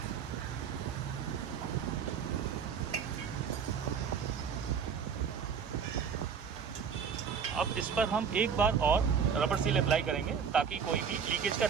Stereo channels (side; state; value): left; quieter; 6.7 dB